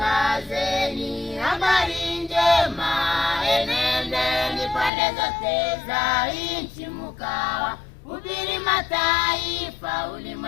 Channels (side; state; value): right; drops out; at 4.9 s